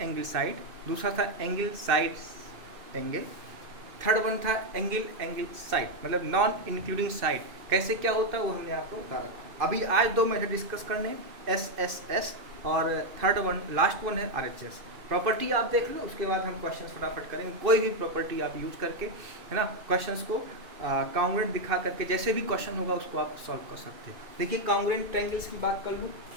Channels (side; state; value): left; late; 2.6 ms